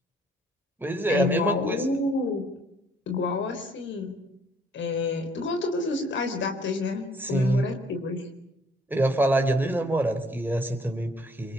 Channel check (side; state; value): both; normal; correlation 0.62